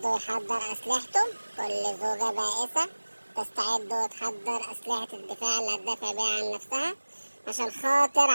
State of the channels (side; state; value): both; inverted; correlation -1.00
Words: ويحضر أسلحته، كل زوجة بائسة تستعد وتحضر أسلحة الدفاع اللي هتدافع بيها عن نفسها عشان خاطر